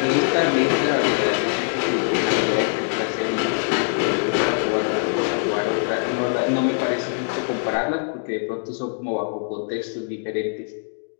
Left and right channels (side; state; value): right; silent; digital silence